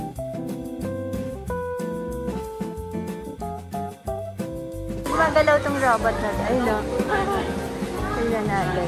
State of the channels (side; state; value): both; identical; correlation 1.00